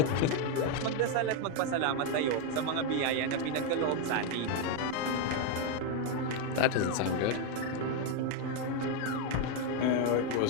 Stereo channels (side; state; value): both; different; correlation 0.01